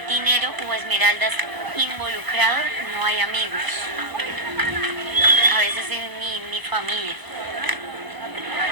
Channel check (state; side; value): late; left; 1.0 ms